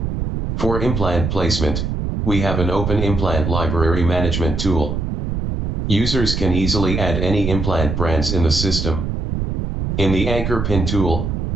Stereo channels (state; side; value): noise; right; rumble, 2 dB below the sound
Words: For implant placement, we have an open implant library management tool. Users can easily add any implant brands in the system. In the anchor pin tool,